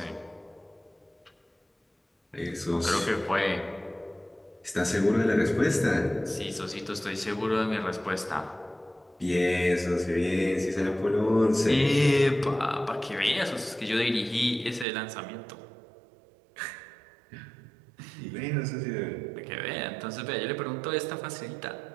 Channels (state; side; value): drops out; left; at 14.9 s